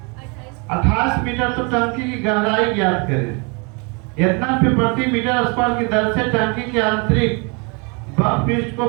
28 मीटर, तो टंकी की गहराई ज्ञात करें। इतना प्रति मीटर स्क्वायर की दर से टंकी के आंतरिक बक पृष्ठ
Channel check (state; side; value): quieter; left; 32.1 dB